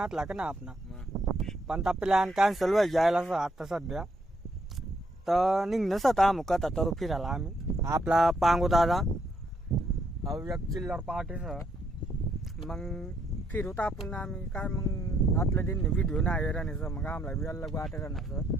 का ना आपला पण त्या प्लॅन कॅन्सल व्हायला जायला असं आता सध्या तर निघणंच आता आम्ही कथा तर फिरायला आम्ही आपला पांगू दादा एक चिल्लर पार्टीसह मग फिरूत आपण आम्ही काय मग आतल्या दिन व्हिडिओ नाही राहण्याचं मग आम्हाला बी अलग वाटे राहण्याचं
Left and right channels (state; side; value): normal; both; correlation 0.73